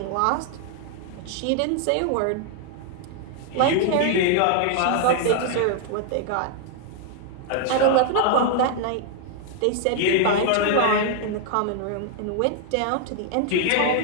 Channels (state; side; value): different; both; correlation 0.00